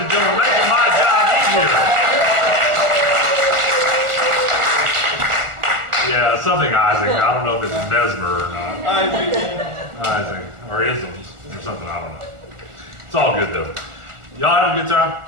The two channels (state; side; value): late; left; 1.4 ms